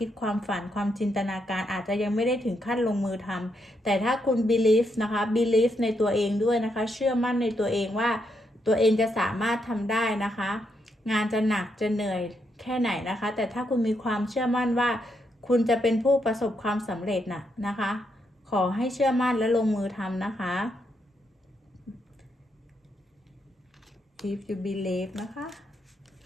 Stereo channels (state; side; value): normal; both; correlation 0.79